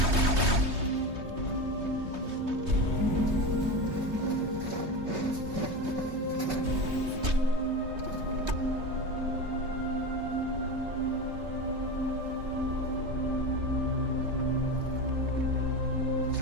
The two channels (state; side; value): late; left; 3.2 ms